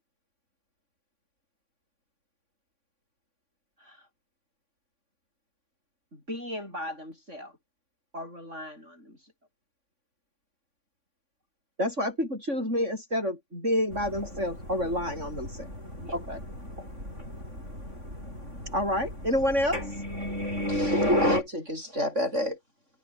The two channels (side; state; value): left; late; 3.6 ms